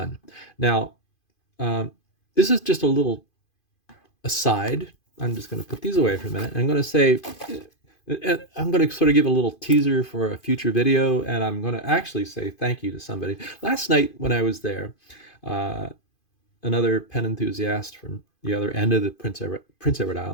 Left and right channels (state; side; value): late; right; 2.5 ms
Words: Now, um, this is just a little aside. I'm just going to put these away for a minute. I'm going to say, I'm going to sort of give a little teaser for a future video, and I'm going to actually say thank you to somebody. Last night when I was there, uh, another pen enthusiast from the other end of the Prince Edward